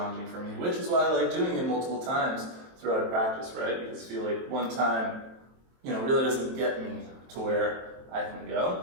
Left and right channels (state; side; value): late; left; 23 ms